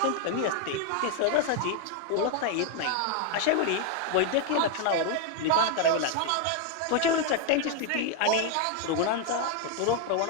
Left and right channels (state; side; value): different; both; correlation 0.00